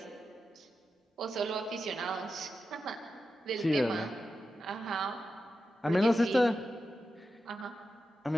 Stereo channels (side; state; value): both; normal; correlation 0.90